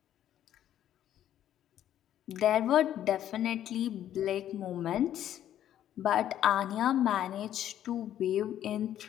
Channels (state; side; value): quieter; right; 11.3 dB